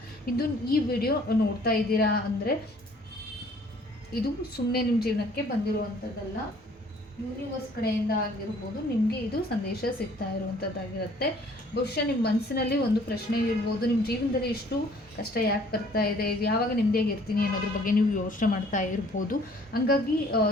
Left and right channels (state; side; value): normal; both; correlation 0.57